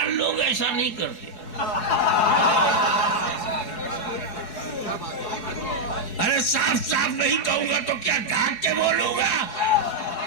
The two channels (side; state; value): right; late; 4.7 ms